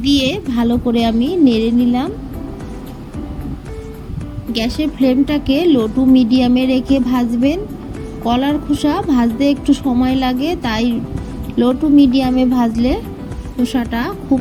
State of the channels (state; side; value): identical; both; correlation 1.00